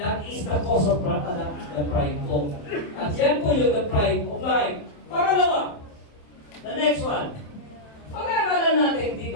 is the cause of the pride po. At yan po yung the pride of life. Pangalawa, the next one. Pag-aaralan natin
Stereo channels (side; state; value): right; late; 27 ms